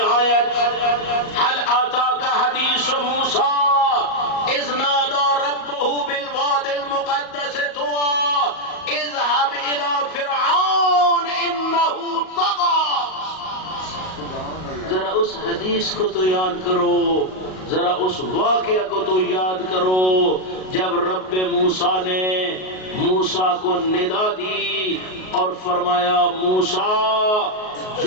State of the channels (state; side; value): late; right; 38 ms